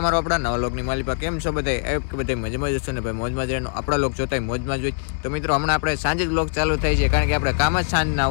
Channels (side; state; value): right; silent; digital silence